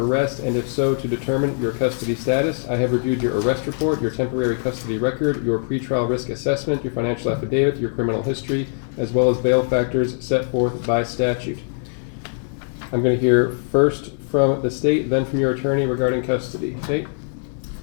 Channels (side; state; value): right; silent; 64 dB below the other